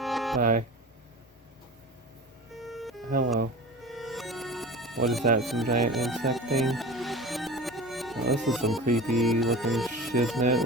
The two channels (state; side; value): normal; both; correlation 0.34